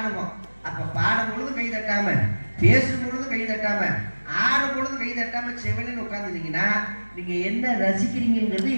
அப்ப பாடும் பொழுது கை தட்டாம, பேசும் பொழுது கை தட்டாம, ஆடும் பொழுது கை தட்டாம செவனின்னு உட்காந்துட்டீங்கன்னா நீங்க என்ன ரசிக்கிறீங்கிறது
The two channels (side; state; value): both; inverted; correlation -1.00